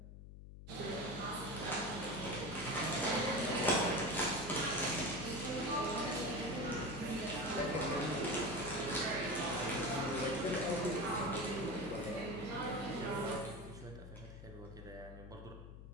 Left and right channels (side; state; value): left; noise; hum, 13 dB below the sound